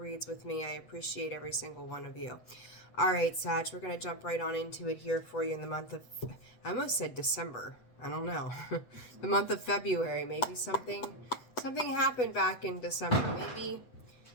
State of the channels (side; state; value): right; late; 8.0 ms